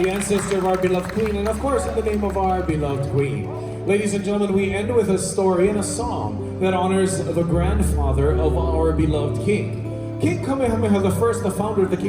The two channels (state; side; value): identical; both; correlation 1.00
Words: ancestor of our beloved queen, and of course in the name of our beloved queen. Ladies and gentlemen, we end with a story and a song that honors the grandfather of our beloved king. King Kamehameha I, the founder of the